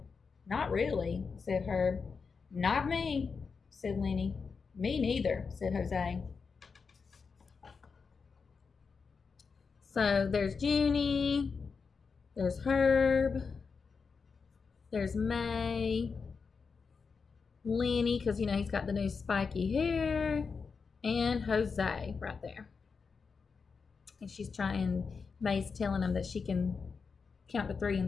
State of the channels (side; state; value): right; quieter; 5.2 dB